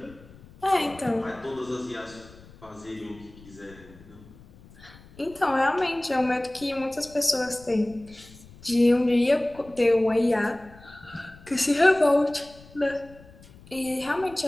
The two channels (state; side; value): noise; left; rumble, 23 dB below the sound